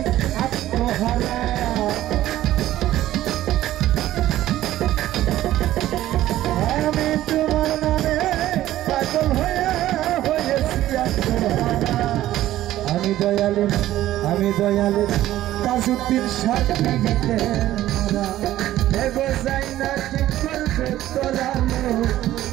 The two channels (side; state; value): left; quieter; 14.1 dB